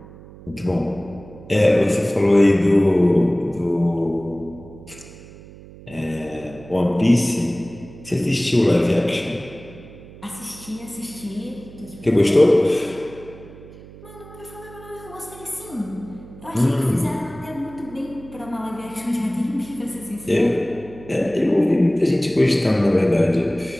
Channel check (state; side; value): noise; right; hum, 19 dB below the sound